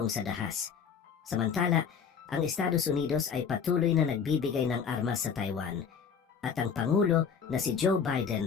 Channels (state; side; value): quieter; right; 6.7 dB